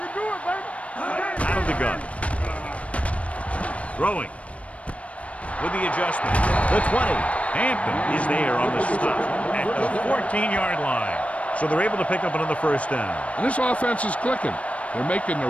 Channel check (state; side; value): late; right; 0.064 ms